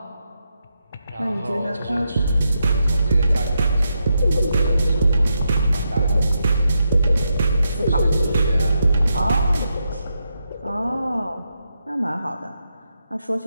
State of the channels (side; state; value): both; inverted; correlation -0.84